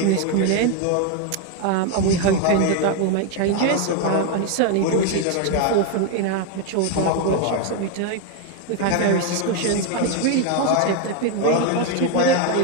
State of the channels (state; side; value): different; both; correlation 0.01